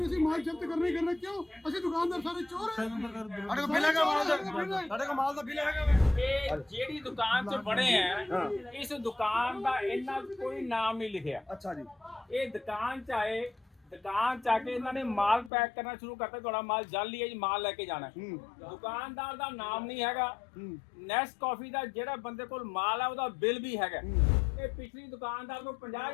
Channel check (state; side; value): drops out; right; at 15.5 s